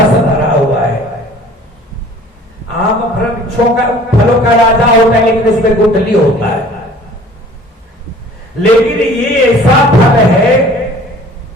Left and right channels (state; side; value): normal; both; correlation 0.50